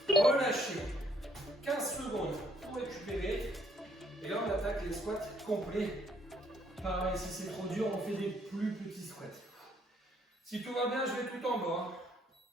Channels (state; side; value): normal; both; correlation 0.66